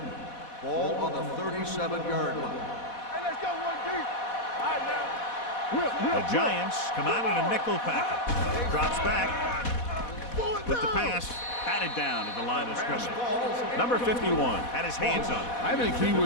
Ball on the 37-yard line. Hey, let's go, 1D. All right, now. The Giants come out in a nickel package. Drops back with the pass. Batted down at the line of scrimmage. Number 51 had his hands on it. I think he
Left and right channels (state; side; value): late; right; 4.1 ms